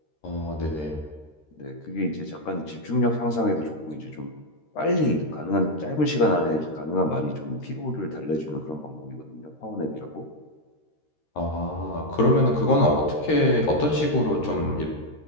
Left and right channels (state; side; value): late; right; 13 ms